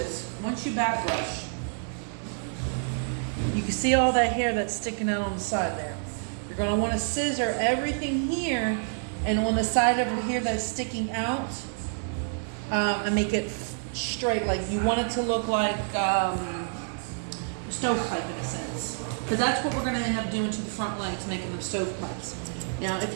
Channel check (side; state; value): left; silent; 59 dB below the other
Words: once you back brush, you can see all that hair that's sticking out on the side there. You're going to want to scissor everything here and on the side over here that's sticking out, and make it straight. Like you want it to look like stovepipe in a sense, because that's what we're going to end up doing to the front legs, making them stovepipes. Now if